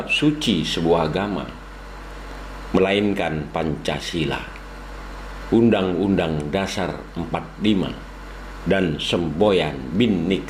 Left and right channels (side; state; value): both; identical; correlation 1.00